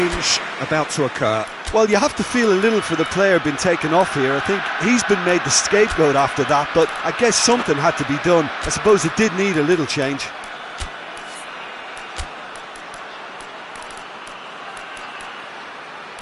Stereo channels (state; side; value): identical; both; correlation 1.00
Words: about to occur. Well, you have to feel a little for the player being taken off here. I think he's been made the scapegoat after that, but I guess something had to be done. I suppose it did need a little change.